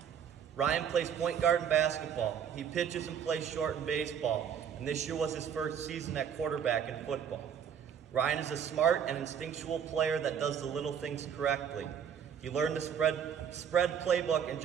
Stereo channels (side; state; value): left; quieter; 8.1 dB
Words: Ryan plays point guard in basketball. He pitches and plays short in baseball, and this year was his first season at quarterback in football. Ryan is a smart and instinctual player that does the little things correctly. He learned the spread playbook in